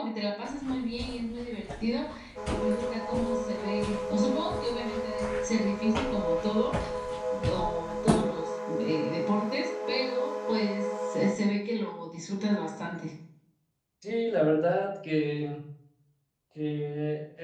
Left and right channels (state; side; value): identical; both; correlation 1.00